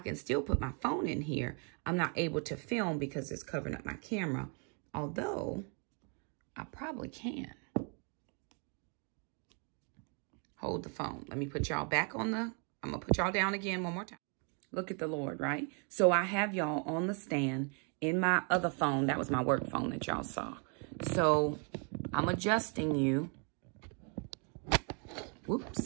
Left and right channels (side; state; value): left; quieter; 37.8 dB